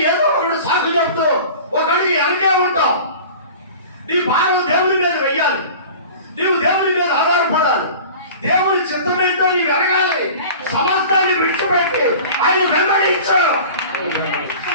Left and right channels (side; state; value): both; inverted; correlation -0.40